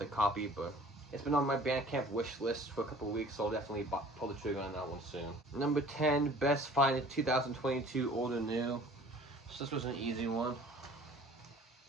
copy, but it's been on my Bandcamp wish list for a couple of weeks, so I'll definitely pull the trigger on that one soon. Number 10, best find in 2022, old or new. So this was an easy one.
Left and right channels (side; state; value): both; normal; correlation 0.49